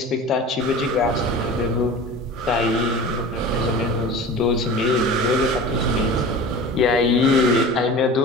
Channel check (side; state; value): both; normal; correlation 0.36